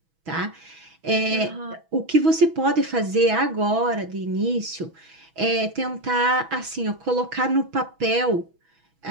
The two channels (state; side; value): late; left; 6.1 ms